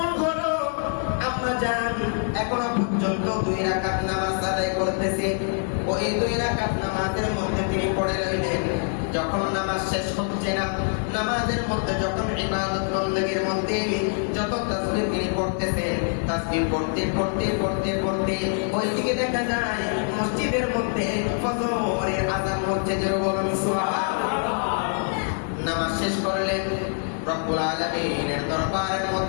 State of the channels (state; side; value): silent; right; 57 dB below the other